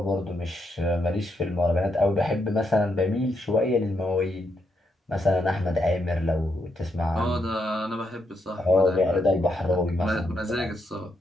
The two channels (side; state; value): both; normal; correlation 0.79